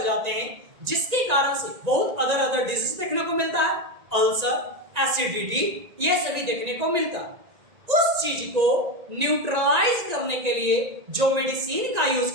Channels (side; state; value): left; late; 1.9 ms